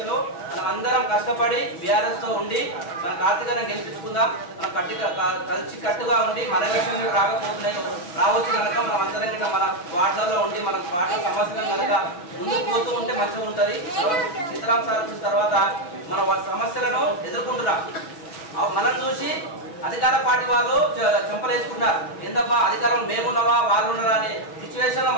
లో మనం అందరం కష్టపడి బీఆర్ఎస్ తో ఉండి మన కార్తీకను గెలిపించుకుందాం. మనం కలిసి కట్టుగా ఉండి మన ఎలక్షన్ రాకపోతున్నాయి రావచ్చు కనుక మనం అందరం గిట్ట మన వార్డులలో ఉండి మన పార్టీ సమస్యలను కనుక ముందుకు పోతూ ఉంటే మంచిగా ఉంటుంది. సీతారాం సార్ వచ్చిన తర్వాత మన సమస్యలను ఎదుర్కొంటున్నాం. మనం చూసి అధికార పార్టీ వాళ్ళు చెంపలేసుకున్నారు. ఏందబ్బా అధికారం మేమున్నావా వాళ్ళు ఉన్నారా అనే సిచ్యువేషన్ లో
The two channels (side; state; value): right; late; 6.0 ms